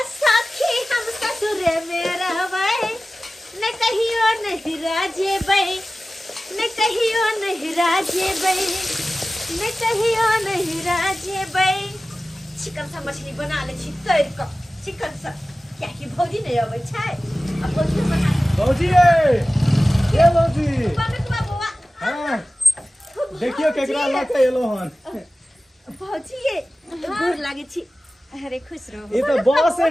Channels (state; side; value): normal; both; correlation 0.96